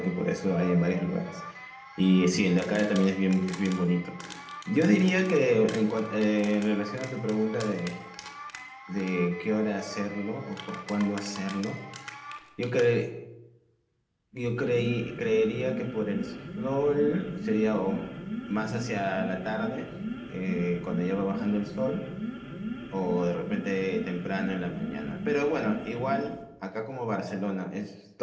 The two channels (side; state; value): both; identical; correlation 1.00